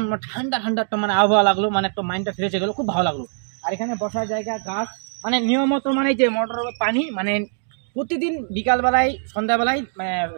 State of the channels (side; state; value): left; silent; digital silence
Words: ঠান্ডা একটা মানে আবহাওয়া লাগলো, মানে একটা মাইন্ডটা ফ্রেশ হয়ে গেলো, খুব ভালো লাগলো। আর এখানে বসার জায়গা, গাছ, মানে নিয়মিত মানে যে মোটর পানি, মানে প্রতিদিন বিকালবেলায়, সন্ধ্যাবেলায়, মানে